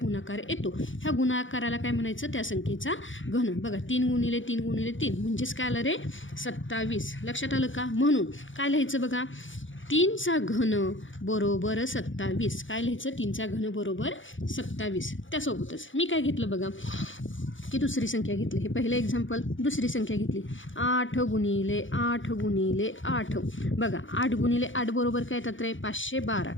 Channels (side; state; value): right; late; 0.56 ms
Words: येतो ह्या गुणाकाराला काय म्हणायचं? त्या संख्येचा घन. बघा 3 गुणिले 3 गुणिले 3 म्हणजेच काय आलं रे? 27. लक्षात आलं का? म्हणून काय लिहायचं बघा, 3चा घन बरोबर 27. काय लिहायचं? 3चा घन बरोबर 27. त्यासोबतच मी काय घेतलं बघा की दुसरी संख्या घेतली. हे पहिलं एक्झाम्पल. दुसरी संख्या घेतली 8 गुणिले 8 गुणिले 8. बघा 8 गुणिले 8 बरोबर काय येतात रे? 512.